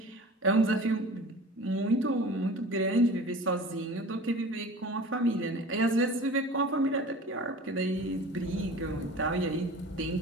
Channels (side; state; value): both; normal; correlation 0.40